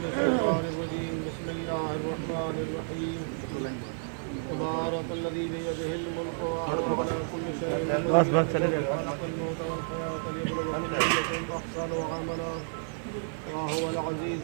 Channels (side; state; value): left; silent; 57 dB below the other